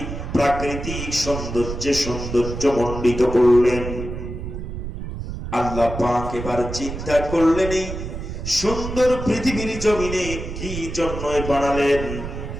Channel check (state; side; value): noise; right; rumble, 7 dB below the sound